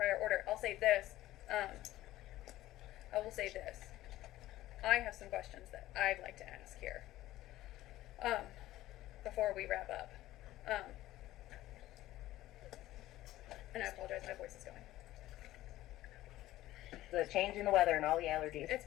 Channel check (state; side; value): quieter; right; 15.4 dB